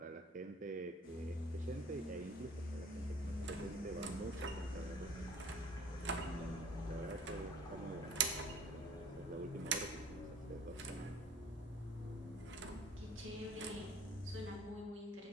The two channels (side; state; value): both; normal; correlation 0.49